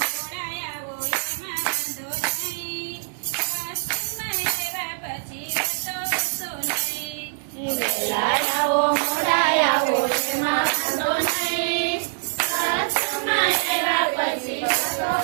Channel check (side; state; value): left; silent; digital silence